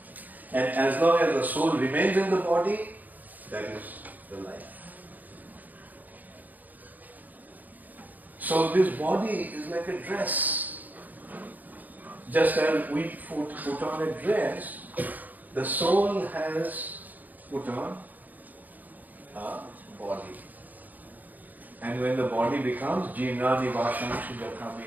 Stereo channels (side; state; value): left; late; 0.082 ms